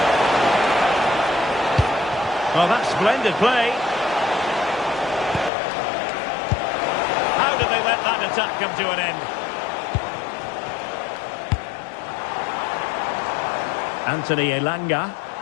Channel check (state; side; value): drops out; right; at 5.5 s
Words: Well, that's splendid play. How did they let that attack come to an end? Anthony Elanga.